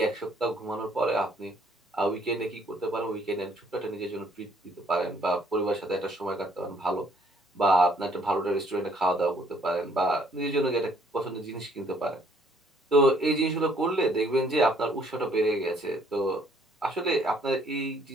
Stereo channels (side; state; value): both; normal; correlation 0.64